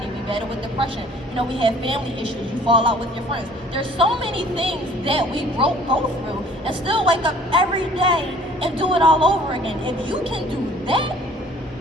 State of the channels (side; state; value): both; normal; correlation 0.53